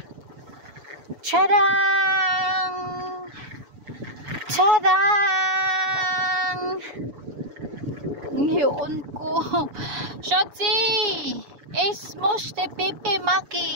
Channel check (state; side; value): late; left; 7.0 ms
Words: Tadang! Tadang! Ngayon ko. Shotzi! Es mochte pipi